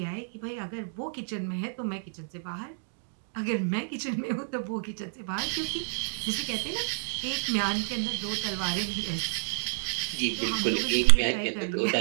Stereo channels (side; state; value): left; silent; digital silence